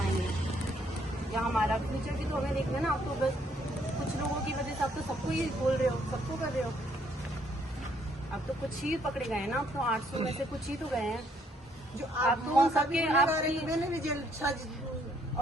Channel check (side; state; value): both; normal; correlation 0.68